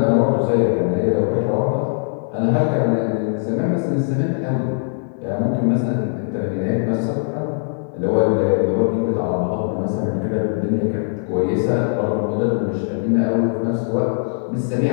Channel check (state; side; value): silent; right; 56 dB below the other